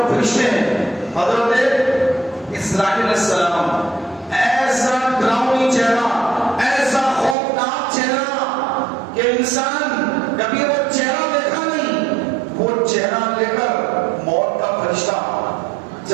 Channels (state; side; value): drops out; left; at 7.4 s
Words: فرشتے ہیں، حضرت اسرائیل علیہ السلام، ایسا ڈراؤنی چہرہ، ایسا خوفناک چہرہ کہ انسان کبھی وہ چہرہ دیکھا نہیں، وہ چہرہ لے کر موت کا فرشتہ